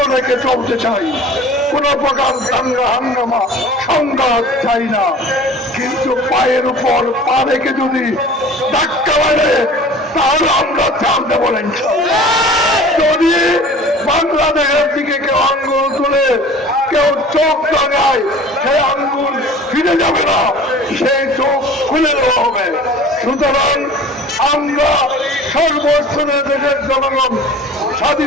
রেখে চলতে চাই। কোন প্রকার দাঙ্গা হাঙ্গামা সংঘাত চাই না। কিন্তু পায়ের উপর পা রেখে যদি ধাক্কা মারে তাহলে আমরা ছাড় দেব না। যদি বাংলাদেশের দিকে কেউ আঙ্গুল তুলে, কেউ চোখ লাগায়, সেই আঙ্গুল ফিরে যাবে না, সেই চোখ খুলে দেওয়া হবে। সুতরাং আমরা সর্বস্তরের দেশের জনগণ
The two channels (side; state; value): both; normal; correlation 0.43